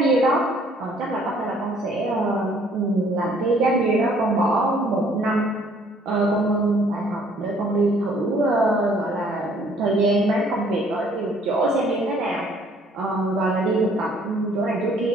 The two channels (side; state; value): both; normal; correlation 0.60